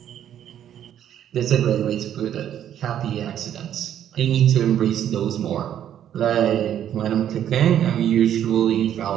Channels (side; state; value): left; quieter; 10.4 dB